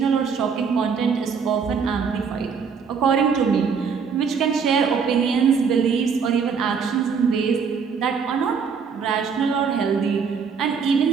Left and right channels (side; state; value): left; quieter; 6.1 dB